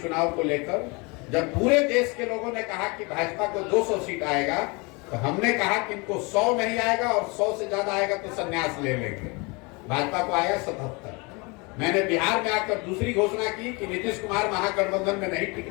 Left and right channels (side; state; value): right; quieter; 28.4 dB